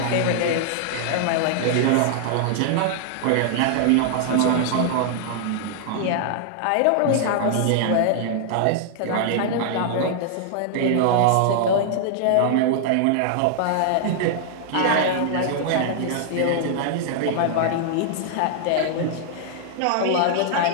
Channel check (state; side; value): different; both; correlation -0.01